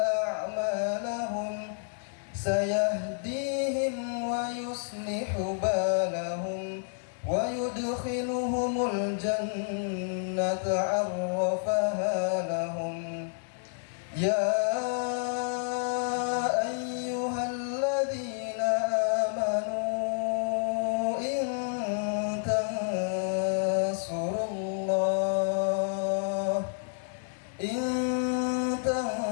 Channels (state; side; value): silent; right; 58 dB below the other